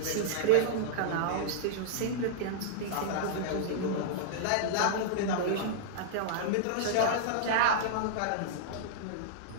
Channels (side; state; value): both; different; correlation -0.02